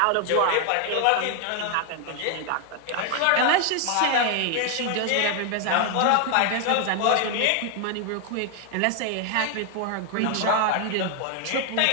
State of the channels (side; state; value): both; different; correlation 0.00